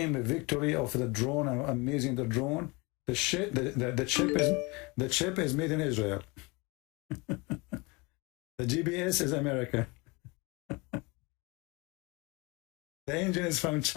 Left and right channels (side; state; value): right; quieter; 26.7 dB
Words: a victory of the drone, amazing the drone. The chip is made in Israel. The GPS is American. The engine is from